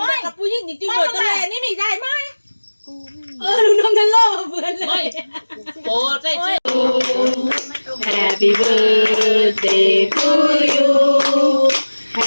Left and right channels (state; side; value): inverted; both; correlation -1.00